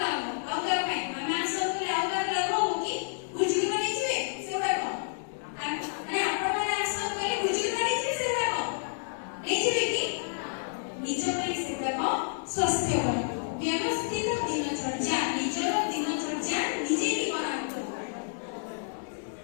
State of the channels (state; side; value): silent; right; digital silence